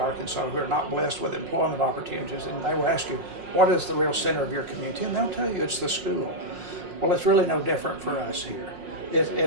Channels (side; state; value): left; late; 5.5 ms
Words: who are not blessed with employment opportunities, and they will ask you, what is the real center of your community? And they'll tell you it's the school. Well, it's really no different for us here.